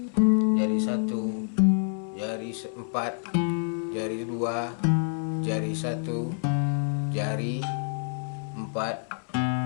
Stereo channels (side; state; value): right; silent; 60 dB below the other